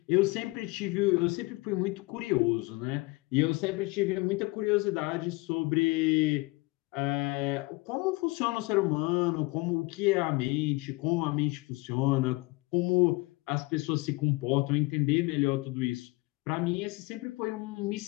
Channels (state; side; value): quieter; right; 24.4 dB